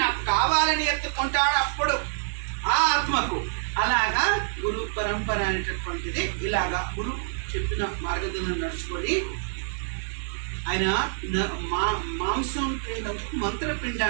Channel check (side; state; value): left; silent; digital silence